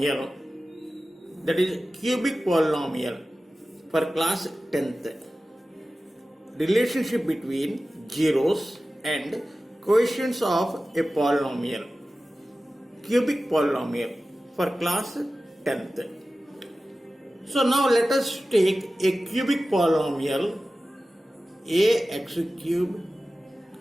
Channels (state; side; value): normal; both; correlation 0.95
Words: that is cubic polynomial, for class 10th. Relationship between zeros and quotients of a polynomial, cubic polynomial, for class 10th. So now let us take a cubic polynomial ax cube